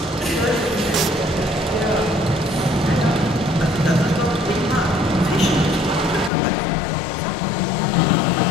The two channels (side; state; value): right; drops out; at 6.3 s